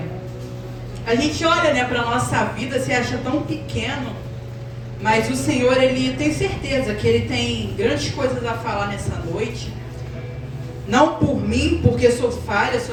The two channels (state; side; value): identical; both; correlation 1.00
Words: a gente olha, né, para a nossa vida, se acha tão pequeno, mas o Senhor, Ele tem certeza que Ele tem grandes coisas a falar nessa noite. Não por mim, porque sou falha,